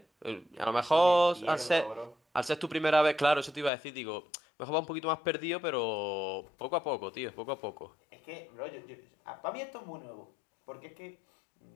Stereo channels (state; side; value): drops out; right; at 3.7 s